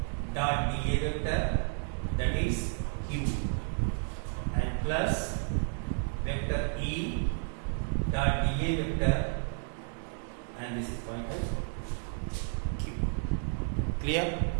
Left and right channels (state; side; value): silent; left; 55 dB below the other